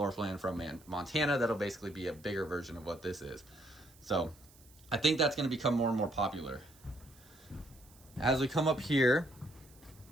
plan from Montana. That'll basically be a bigger version of what this is. So I think that's going to become more and more popular. As we come up here,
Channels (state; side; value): noise; right; hiss, 26 dB below the sound